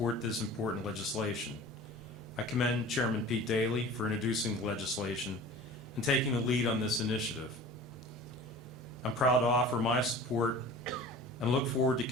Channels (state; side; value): normal; both; correlation 0.41